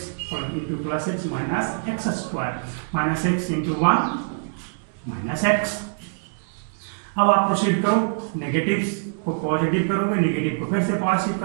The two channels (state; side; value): silent; left; digital silence